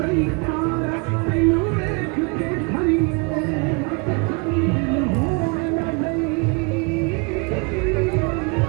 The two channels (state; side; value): quieter; left; 31.9 dB